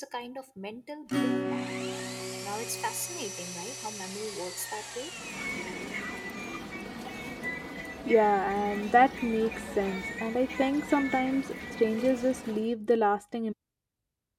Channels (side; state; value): both; identical; correlation 1.00